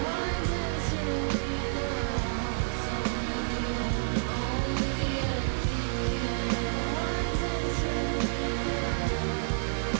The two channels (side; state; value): left; silent; digital silence